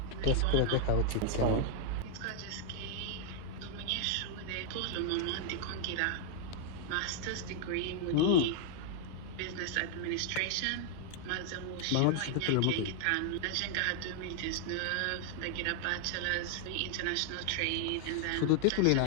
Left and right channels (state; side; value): different; both; correlation 0.00